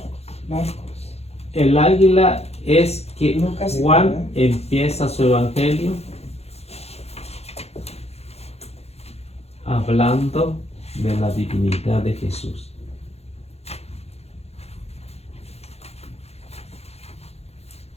Marcos. El águila es que Lucas y Juan Juan. empieza su evangelio hablando de la divinidad de Jesús.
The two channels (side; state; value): right; late; 0.30 ms